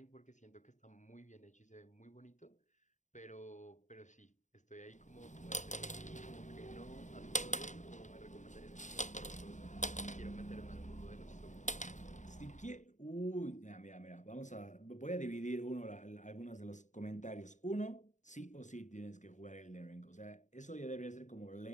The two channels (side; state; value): right; late; 0.35 ms